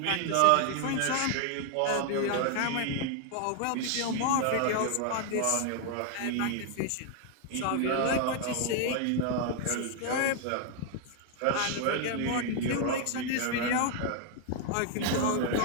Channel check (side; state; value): both; different; correlation 0.00